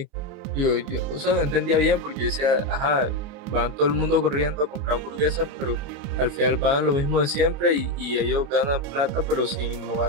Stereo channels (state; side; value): late; left; 29 ms